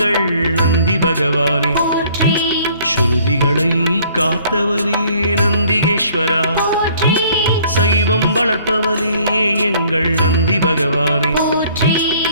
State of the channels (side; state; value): both; inverted; correlation -0.58